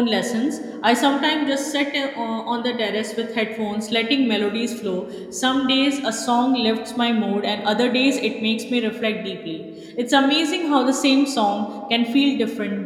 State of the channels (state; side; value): identical; both; correlation 1.00